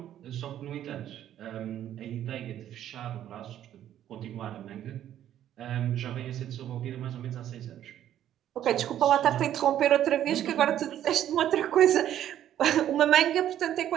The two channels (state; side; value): quieter; left; 11.3 dB